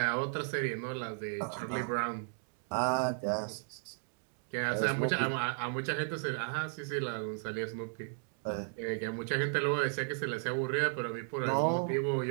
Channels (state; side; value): silent; left; digital silence